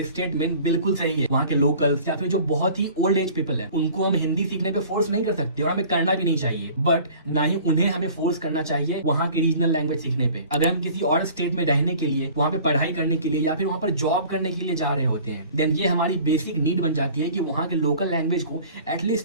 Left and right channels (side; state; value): both; inverted; correlation -0.47